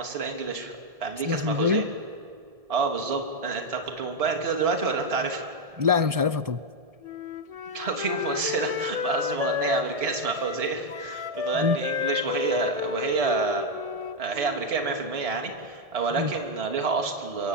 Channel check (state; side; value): late; left; 1.7 ms